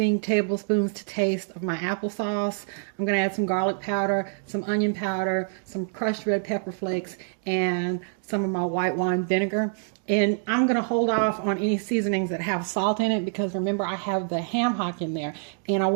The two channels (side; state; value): left; silent; 61 dB below the other